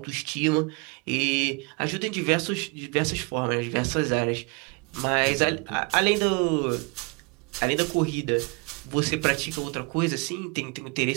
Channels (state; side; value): quieter; left; 30.7 dB